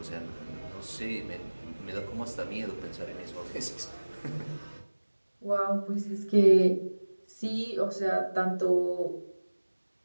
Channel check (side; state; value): both; inverted; correlation -1.00